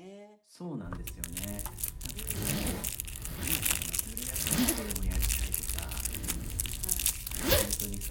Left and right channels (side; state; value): both; identical; correlation 1.00